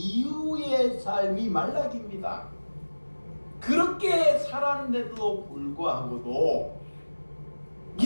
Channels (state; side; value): inverted; both; correlation -1.00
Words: 삶이 말라기입니다. 그렇게 살았는데도 불구하고도